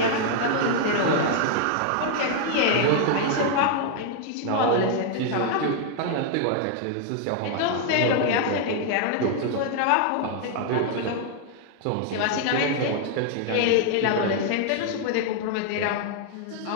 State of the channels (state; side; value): different; both; correlation 0.00